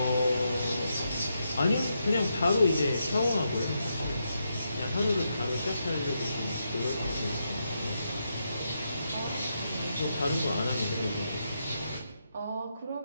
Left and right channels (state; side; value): inverted; both; correlation -0.82